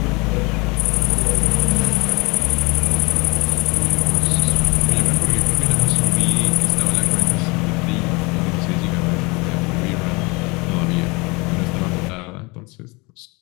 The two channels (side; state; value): right; quieter; 26.7 dB